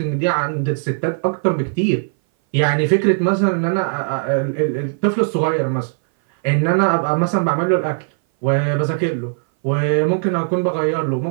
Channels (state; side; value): silent; left; 60 dB below the other